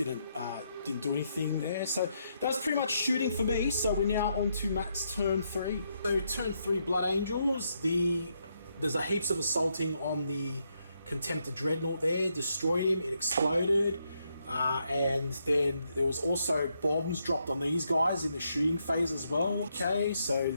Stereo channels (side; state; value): both; inverted; correlation -0.78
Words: do anything there. So that's pretty much shooting for me. So we're now on to Matt's turn 3. So turn 3, Blood Angels. There's a heaps of assaulting on the Contemptor Dreadnought there. Destroyed him. It exploded. And then there was also bombs dropped on these guys in the shooting phase as well. Okay, so